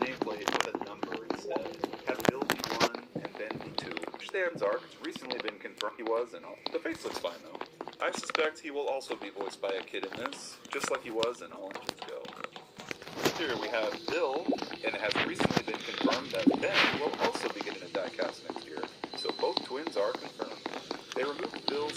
with a number instead. Have Bill be 1 and Ben be 2. Which stands are recently been confirmed he was, and the face looks fine though. I suspect he will also be voiced by a kid in this, just like he was in All Engines Go. Here we have Bill, and it has recently been confirmed that Ben will also be getting a diecast next year. So both twins are confirmed. They removed Bill's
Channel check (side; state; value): both; identical; correlation 1.00